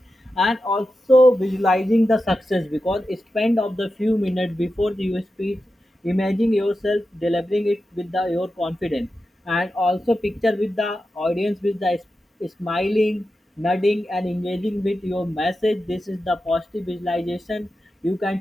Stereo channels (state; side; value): normal; both; correlation 0.91